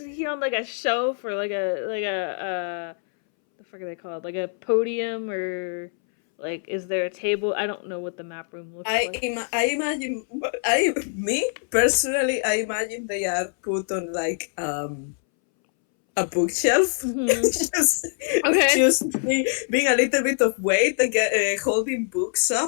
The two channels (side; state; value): right; silent; 62 dB below the other